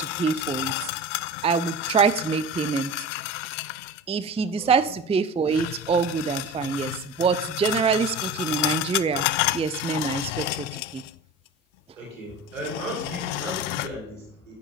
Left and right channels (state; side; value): normal; both; correlation 0.32